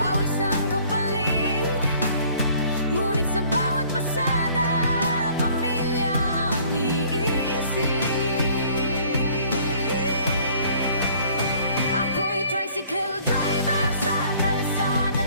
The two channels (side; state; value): both; inverted; correlation -0.56